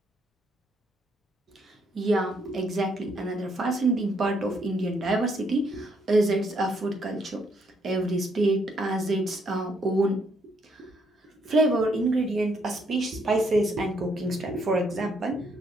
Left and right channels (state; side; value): normal; both; correlation 0.72